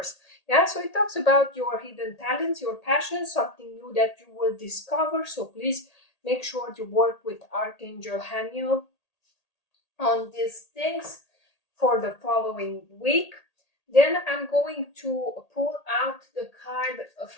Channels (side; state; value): right; late; 1.8 ms